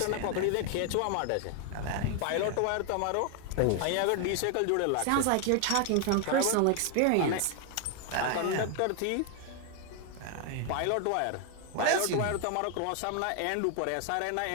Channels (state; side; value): different; both; correlation 0.00